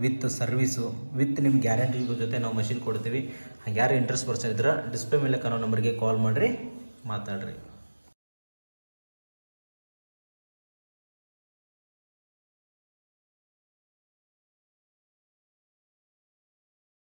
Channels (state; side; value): inverted; both; correlation -1.00